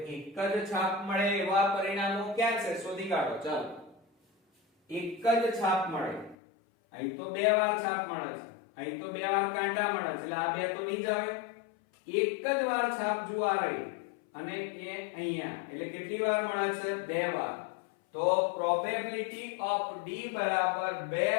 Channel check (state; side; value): drops out; right; at 6.4 s